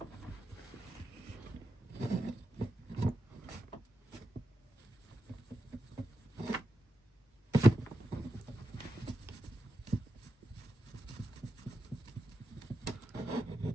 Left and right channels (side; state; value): both; normal; correlation 0.88